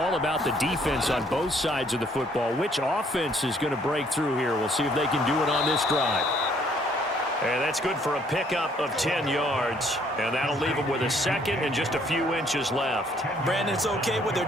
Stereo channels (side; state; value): both; normal; correlation 0.64